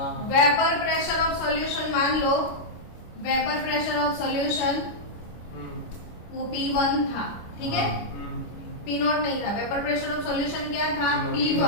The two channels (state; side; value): late; right; 25 ms